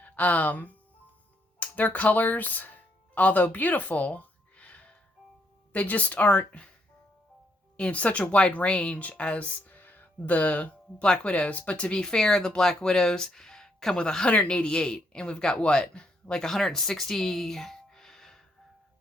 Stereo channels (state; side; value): normal; both; correlation 0.74